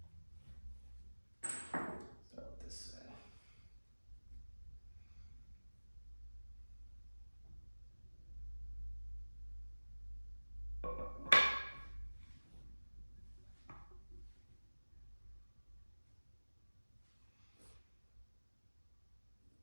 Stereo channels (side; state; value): both; inverted; correlation -1.00